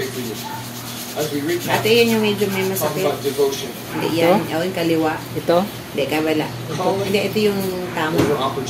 Ate, yun yung medyo may masakit. Hindi yan. Yung kaliwa. Ito? Hindi, kabala. Hindi, ito yung tama.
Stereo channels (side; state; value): both; identical; correlation 1.00